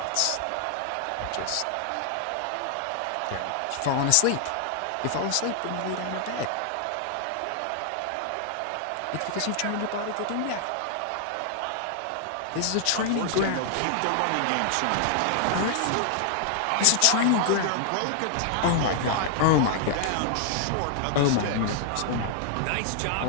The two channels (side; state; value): both; different; correlation 0.00